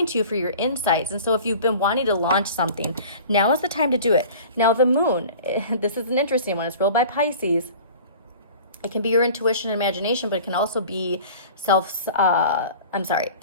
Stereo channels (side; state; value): both; inverted; correlation -0.42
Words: you for your insights. And so if you've been wanting to launch something, now is the time to do it. Now the moon, this is an interesting one. It's ruled by Pisces. It can be your intuition and imagination, but it can also be subconscious